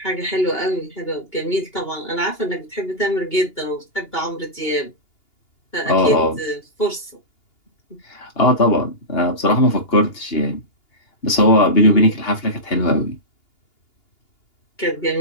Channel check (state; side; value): late; right; 2.8 ms